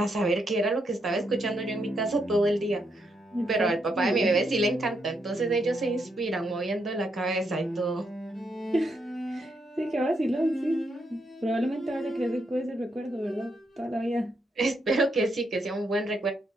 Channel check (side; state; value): both; normal; correlation 0.79